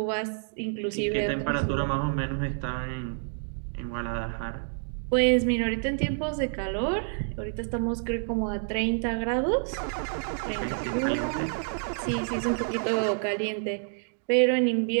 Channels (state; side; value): silent; left; digital silence